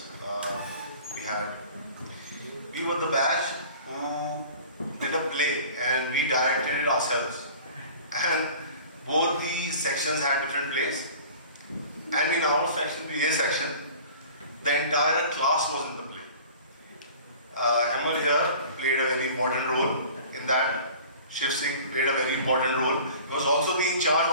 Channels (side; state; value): both; inverted; correlation -0.44